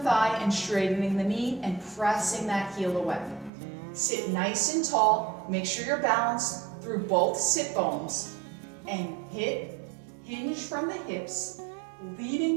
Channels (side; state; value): left; drops out; at 3.5 s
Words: and straightening the knee and pressing that heel away. Sit nice and tall. Make sure you're balanced through both sit bones and hinge from the hips,